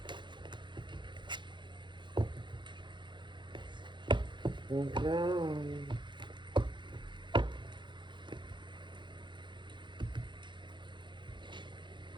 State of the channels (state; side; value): late; left; 0.23 ms